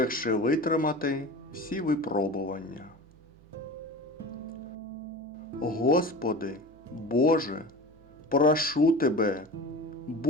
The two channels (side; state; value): right; noise; hum, 26 dB below the sound